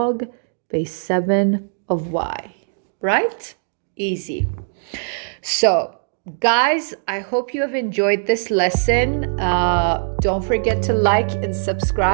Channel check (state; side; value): silent; left; digital silence